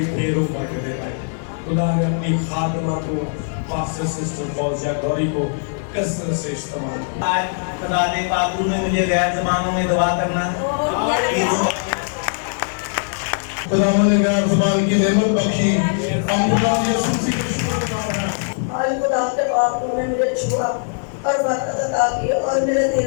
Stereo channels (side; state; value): right; silent; digital silence